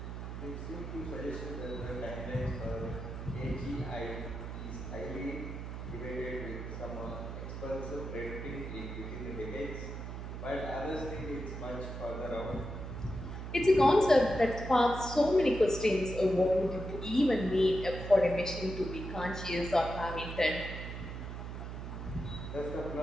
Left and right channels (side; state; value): right; noise; hum, 7 dB below the sound